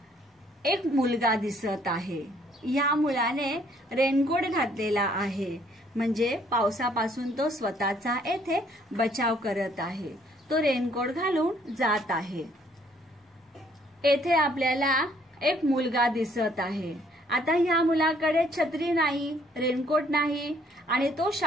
एक मुलगा दिसत आहे. या मुलाने रेनकोट घातलेला आहे, म्हणजे पावसापासून तो स्वतःचा येथे बचाव करत आहे. तो रेनकोट घालून जात आहे. येथे आपल्याला एक मुलगा दिसत आहे. आता ह्या मुलाकडे छत्री नाही, रेनकोट नाही आणि तो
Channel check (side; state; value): both; normal; correlation 0.64